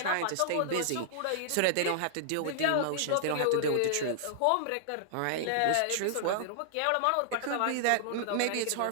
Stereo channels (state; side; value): different; both; correlation -0.01